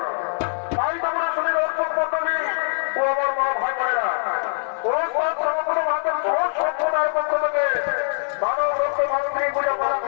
তাই তোমরা শরীর অর্থক মন্ডলী ও আমার মা ভাই বোনেরা, সম্প্রদায়ের পক্ষ থেকে মানব রক্ত মাতৃ পূজা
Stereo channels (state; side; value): silent; right; digital silence